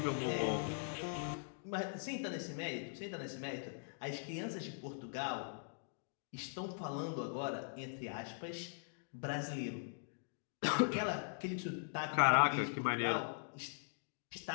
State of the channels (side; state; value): right; silent; digital silence